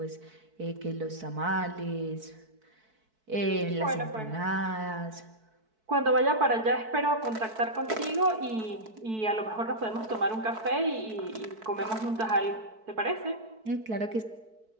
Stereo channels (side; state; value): left; late; 4.6 ms